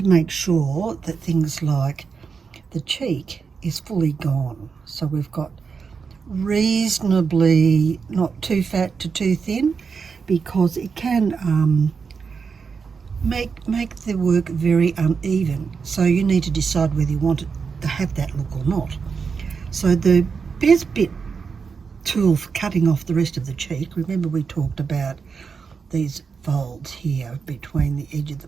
make sure that things like the cheek is fully gone. So we've got reasonably not too fat to too thin, because it can make the work very uneven. So you need to decide whether you want it to have that look or not. So the best bit tool for cutting off the rest of the cheek, remember we talked about these folds here between the edge of the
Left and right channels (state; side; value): quieter; left; 5.5 dB